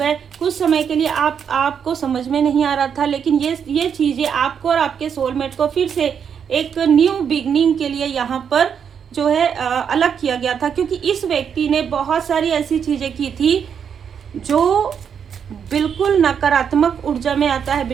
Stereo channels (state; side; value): quieter; left; 7.5 dB